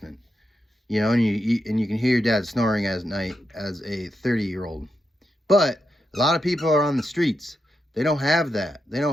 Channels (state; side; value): normal; both; correlation 0.85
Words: you know, and you can hear your dad snoring at night as a 30-year-old. But a lot of people are on the streets. They don't have that. They